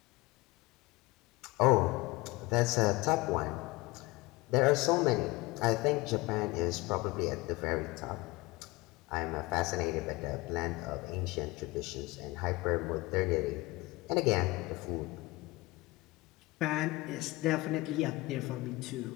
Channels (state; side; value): quieter; right; 21.6 dB